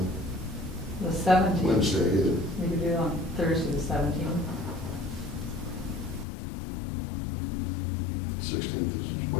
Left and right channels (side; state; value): right; drops out; at 6.2 s